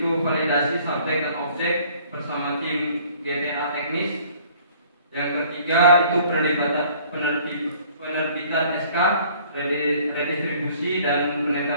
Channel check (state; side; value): inverted; both; correlation -0.55